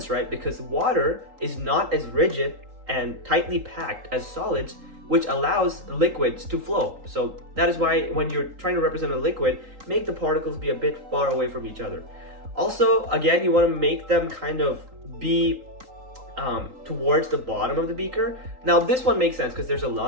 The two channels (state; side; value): late; left; 3.8 ms